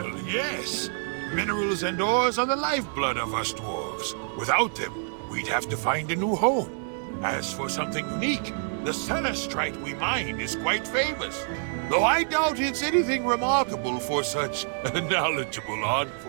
yes. Minerals and ores are the lifeblood of us dwarves. Without them, we'd have to find a new home. As for something unique, the Celestite we mine is quite famous. Though I doubt it's anything remarkable for such knowledgeable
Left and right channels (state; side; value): silent; left; 60 dB below the other